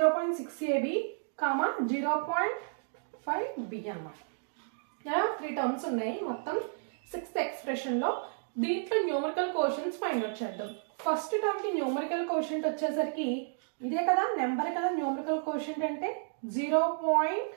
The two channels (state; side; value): silent; left; digital silence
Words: 0.5b అన్నమాట. 3 టర్మ్స్ ఉన్నాయి మొత్తం సిక్స్త్ ఎక్స్ప్రెషన్ లో. దీంట్లో న్యూమరికల్ కోషంట్స్ ఫైండ్ అవుట్ చేద్దాం. ఫస్ట్ టర్మ్ కి న్యూమరికల్ కోషంట్ వచ్చేసరికి ఇదే కదా, నెంబర్ కదా న్యూమరికల్ కోషంట్ అంటే